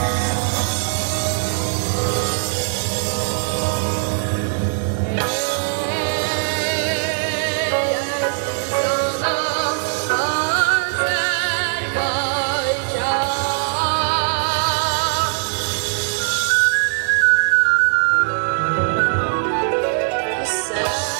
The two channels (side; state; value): left; silent; 56 dB below the other